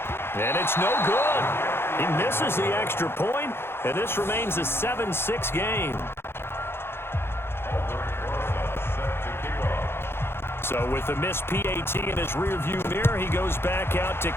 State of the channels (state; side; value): late; right; 0.11 ms